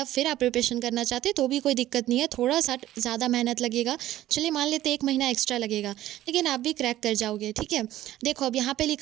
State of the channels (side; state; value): left; quieter; 14.2 dB